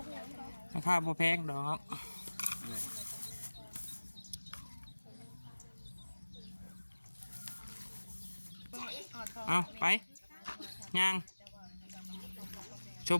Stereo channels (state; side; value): inverted; both; correlation -1.00